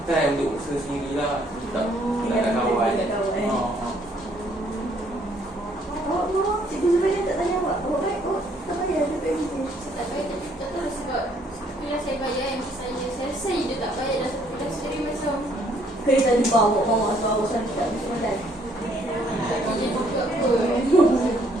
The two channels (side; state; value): both; normal; correlation 0.66